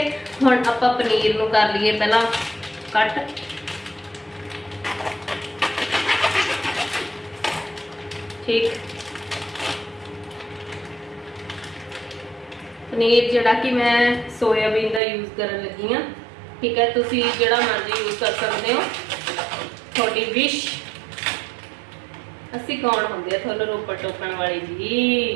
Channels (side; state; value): left; drops out; at 15.0 s